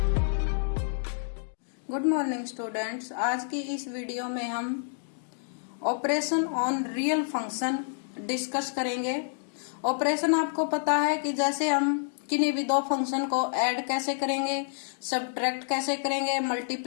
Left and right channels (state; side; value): silent; right; digital silence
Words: Good morning students. आज की इस वीडियो में हम operation on real function discuss करेंगे। ऑपरेशन आपको पता है कि जैसे हम किन्हीं भी दो फंक्शन को ऐड कैसे करेंगे, सब्ट्रैक्ट कैसे करेंगे,